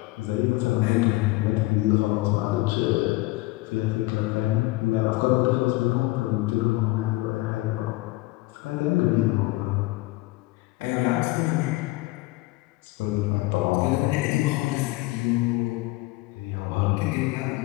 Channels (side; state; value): right; quieter; 20.2 dB